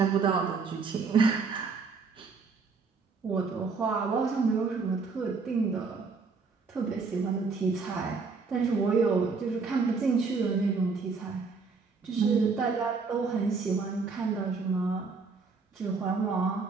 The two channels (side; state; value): left; quieter; 4.7 dB